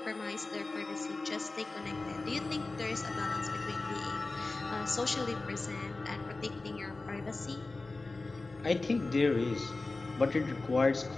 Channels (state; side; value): quieter; right; 3.4 dB